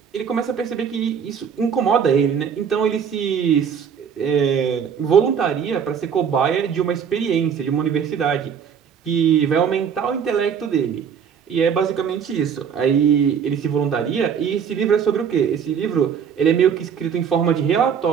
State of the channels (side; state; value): left; quieter; 7.4 dB